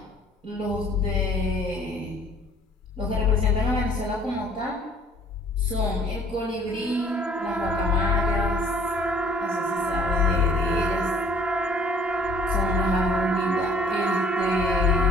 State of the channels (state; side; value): normal; both; correlation 0.56